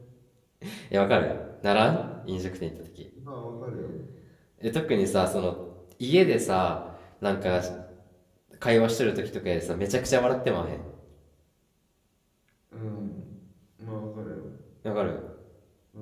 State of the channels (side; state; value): both; identical; correlation 1.00